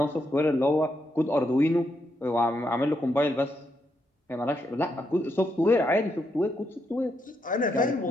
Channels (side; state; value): both; normal; correlation 0.80